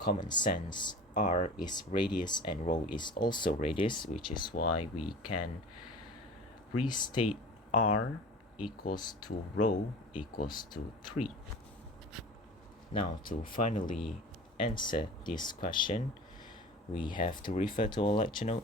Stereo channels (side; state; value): both; normal; correlation 0.38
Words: sense, R is radius and rho is also radius, which is why we can restate R equals to rho equals to 3. Now, to finally answer this question, we have to refer to our lecture